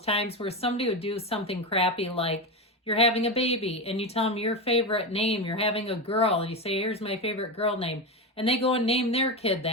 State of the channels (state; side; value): normal; both; correlation 0.17